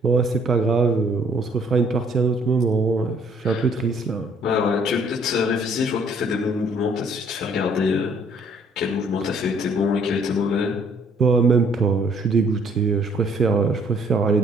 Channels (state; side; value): normal; both; correlation 0.62